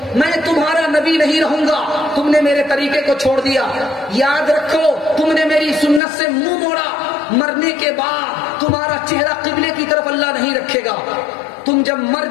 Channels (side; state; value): right; drops out; at 6.0 s